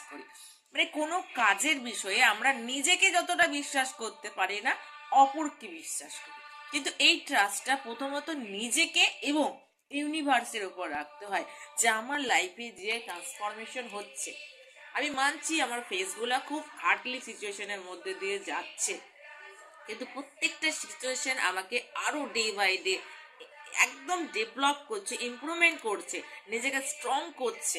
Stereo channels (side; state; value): both; identical; correlation 1.00